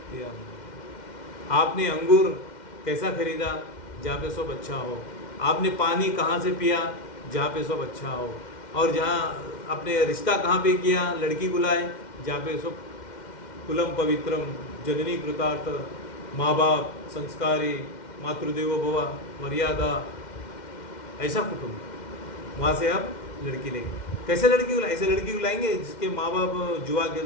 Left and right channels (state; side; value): late; right; 2.1 ms